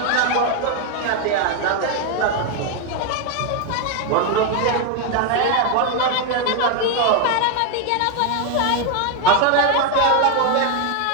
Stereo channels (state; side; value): different; both; correlation 0.01